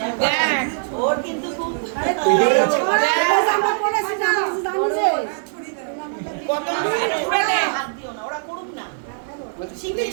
দেখ ওর কিন্তু খুব আমরা করেছি না, আমরা জানি যে কত জোরে দে। হাত দিও না, ওরা করুক না।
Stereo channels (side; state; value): left; silent; digital silence